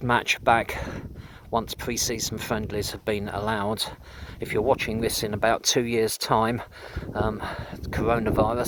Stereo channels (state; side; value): identical; both; correlation 1.00